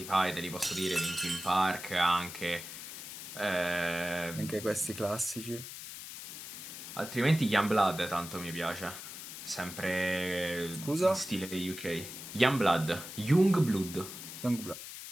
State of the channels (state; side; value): noise; left; hiss, 10 dB below the sound